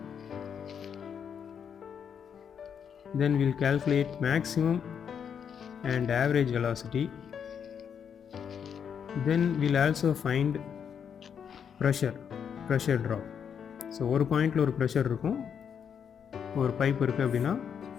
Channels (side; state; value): right; quieter; 7.6 dB